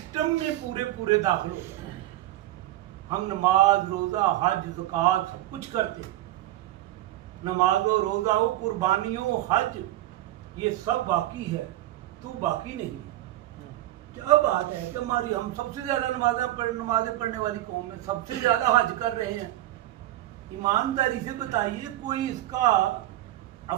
میں پورے داخل ہو جاؤ۔ ہم نماز، روزہ، حج، زکوٰۃ سب کچھ کرتے ہیں، نماز و روزہ و قربانیوں، حج، یہ سب باقی ہے، تو باقی نہیں۔ کیا بات ہے کہ ہم سب سے زیادہ نمازیں پڑھنے والی قوم ہے، سب سے زیادہ حج کر رہے ہیں۔ ایمانداری سے بتائیے کوئی اس کا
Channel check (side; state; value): left; quieter; 14.9 dB